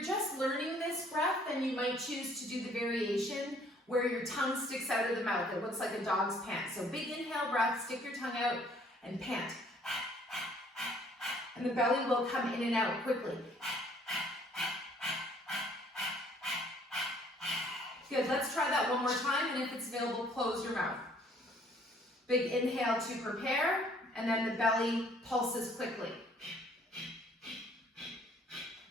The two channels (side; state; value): both; normal; correlation 0.60